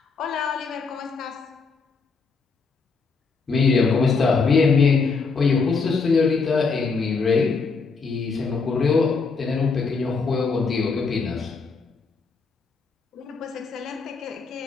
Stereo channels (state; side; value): quieter; right; 4.7 dB